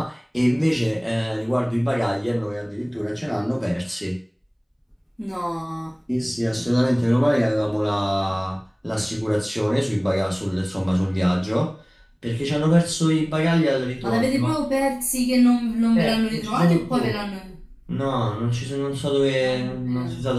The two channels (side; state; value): both; identical; correlation 1.00